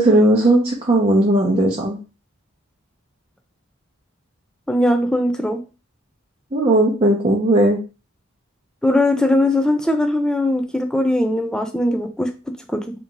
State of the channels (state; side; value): normal; both; correlation 0.69